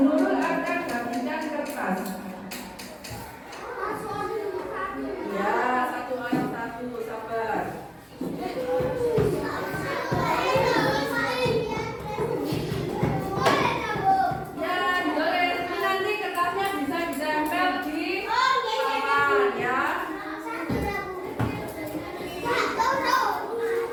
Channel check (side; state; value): both; identical; correlation 1.00